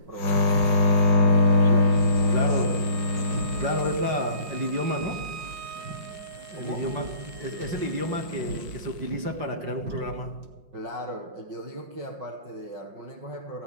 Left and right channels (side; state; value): left; late; 5.6 ms